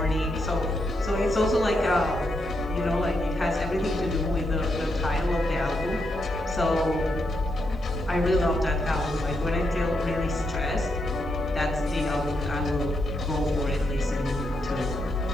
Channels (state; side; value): normal; both; correlation 0.81